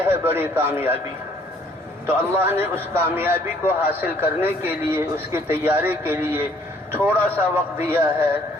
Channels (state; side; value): normal; both; correlation 0.62